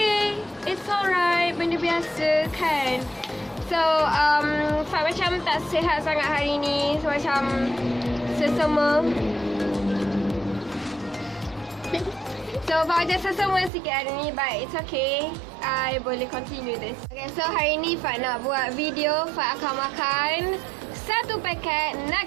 it's alright, benda biasa kan. So, Fat macam tak sihat sangat hari ni, so macam sesama. So, Fat macam sesama sikit hari ni, but it's okay, I boleh continue this. Okay, so hari ni Fat nak buat video. Fat akan makan satu paket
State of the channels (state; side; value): drops out; left; at 13.7 s